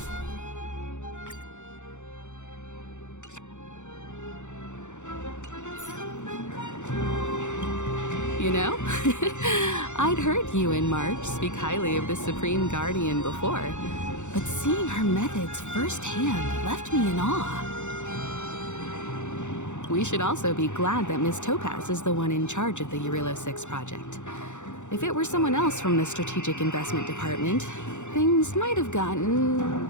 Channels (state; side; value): late; right; 0.84 ms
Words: You know, I'd heard you and March speak highly of the Supreme Guardian before, but seeing her methods firsthand left me in awe. We should also be glad that Miss Topaz is the one in charge of the Eurilo 6 project. If it were someone else from the Strategic Investment Department, things might have gotten